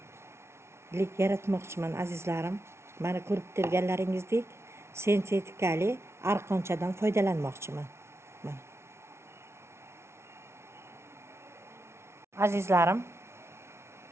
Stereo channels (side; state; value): left; late; 0.13 ms